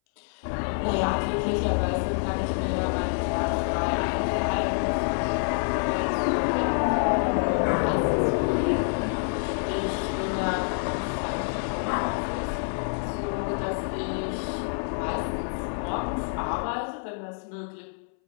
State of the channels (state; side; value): silent; right; 60 dB below the other